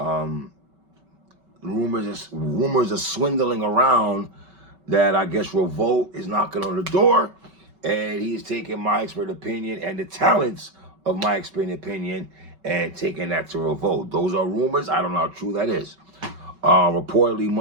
Rumors are swindling around that I guess Revolt is knocking on the door, and he is taking My Expert Opinion and the talents of My Expert Opinion and taking that to Revolt. Those are rumors. I don't know how true that is. Reportedly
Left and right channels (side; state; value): left; late; 5.3 ms